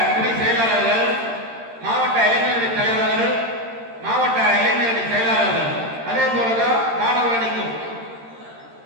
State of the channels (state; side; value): late; left; 13 ms